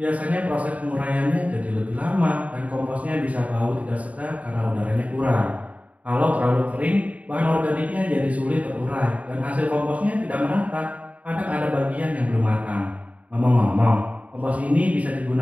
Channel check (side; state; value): left; late; 0.069 ms